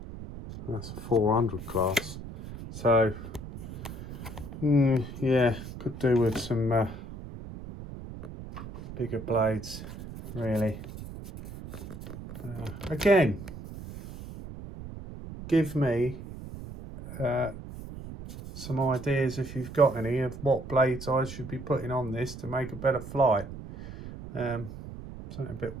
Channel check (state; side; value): noise; right; rumble, 11 dB below the sound